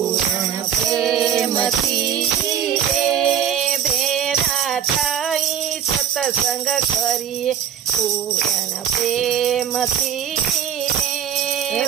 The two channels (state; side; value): quieter; left; 9.3 dB